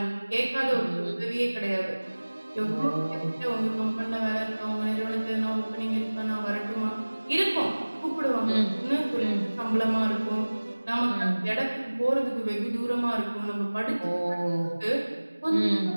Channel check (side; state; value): both; inverted; correlation -1.00